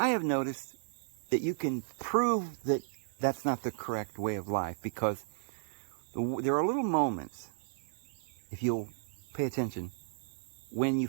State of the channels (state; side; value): silent; left; 55 dB below the other